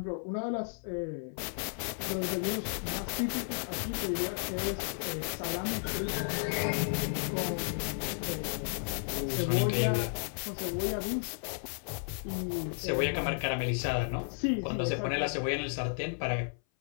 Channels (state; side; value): silent; right; 55 dB below the other